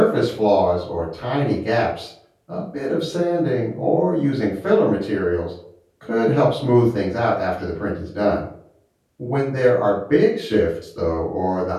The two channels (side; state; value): both; identical; correlation 1.00